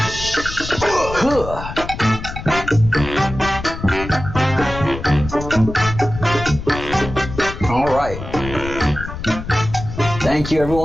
All right. Thank you,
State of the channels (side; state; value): left; noise; rumble, 9 dB below the sound